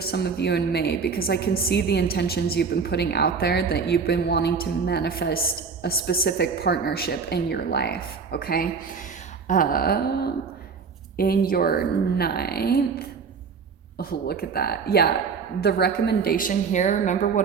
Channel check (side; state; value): left; quieter; 5.5 dB